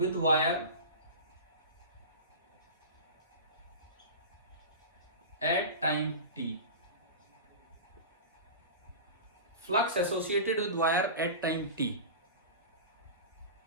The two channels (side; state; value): both; inverted; correlation -0.30